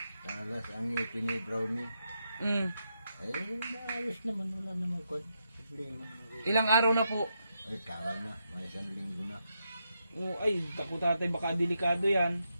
Talas ang ngipin ni Brownie. Ay, maayos naman. Wala naman kwan. Problema. Ilang araw na po? Ay, tagal na. May 1 linggo na. O, ay, tapo tatay, baka delikado yan.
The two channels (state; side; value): inverted; both; correlation -0.83